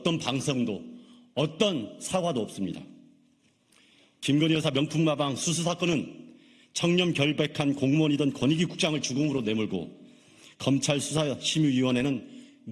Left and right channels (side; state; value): both; identical; correlation 1.00